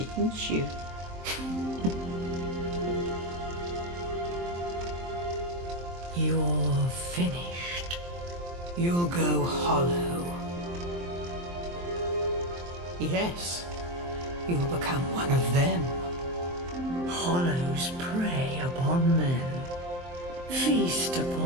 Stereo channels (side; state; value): left; late; 23 ms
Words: you? You're finished. You'll go hollow. Yes, you'll become one of them. Hollows prey upon men, feast